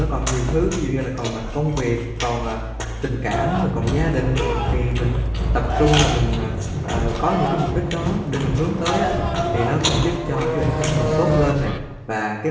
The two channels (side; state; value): both; identical; correlation 1.00